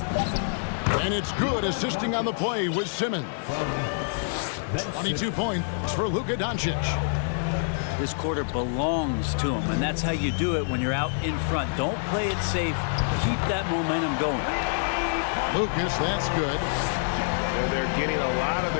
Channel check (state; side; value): silent; right; digital silence